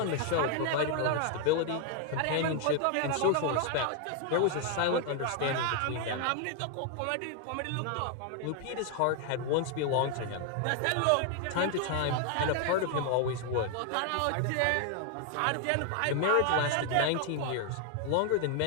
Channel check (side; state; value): both; different; correlation 0.00